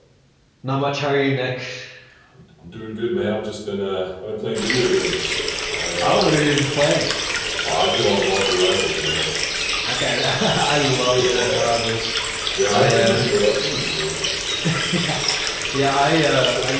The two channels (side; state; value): both; identical; correlation 1.00